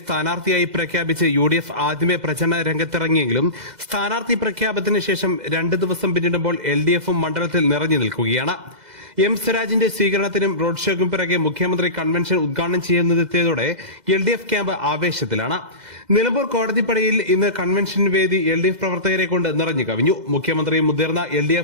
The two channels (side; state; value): left; late; 2.0 ms